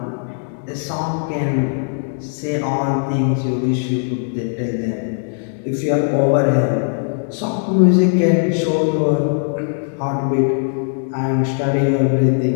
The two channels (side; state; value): right; silent; digital silence